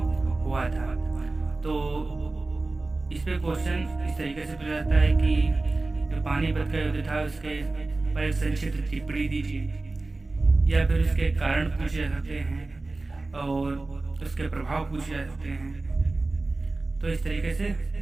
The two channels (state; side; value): quieter; left; 3.2 dB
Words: हुआ था। तो इस पे क्वेश्चन इस तरीके से पूछा जाता है कि जो पानीपत का युद्ध था उसके पर एक संक्षिप्त टिप्पणी दीजिए, या फिर उसके कारण पूछे जा सकते हैं और उसके प्रभाव पूछे जा सकते हैं। तो इस तरीके से